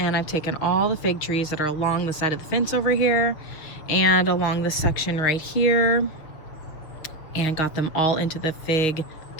I've taken all the fig trees that are along the side of the fence over here and along this section right here and got them all into the fig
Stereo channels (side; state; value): right; late; 6.8 ms